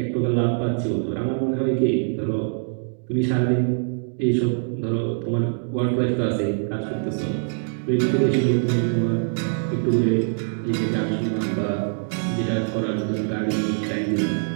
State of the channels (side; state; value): left; silent; digital silence